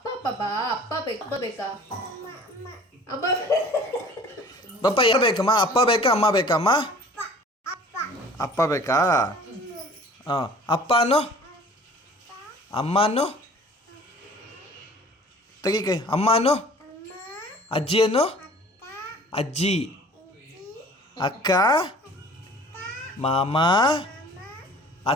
ಪಾಪಾ ಅಪ್ಪ ಬೇಕು. ಅಪ್ಪ ಬೇಕಾ? ಅಮ್ಮ ಪಪ್ಪ ಯಾರು ಬೇಕಮ್ಮ? ಅಪ್ಪ ಬೇಕಾ ಅಮ್ಮ ಬೇಕಮ್ಮ? ಅಪ್ಪ ಬೇಕಾ? ಹಾಂ. ಅಪ್ಪನು ಅಮ್ಮನು ತೆಗಿ ಕೈ. ಅಮ್ಮನು ಅಜ್ಜಿಯನ್ನು ಅಜ್ಜಿ ಅಕ್ಕ ಮಾಮ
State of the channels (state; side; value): normal; both; correlation 0.48